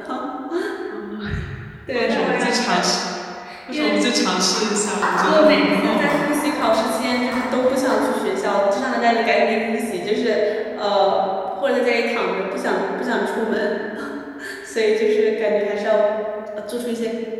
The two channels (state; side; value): identical; both; correlation 1.00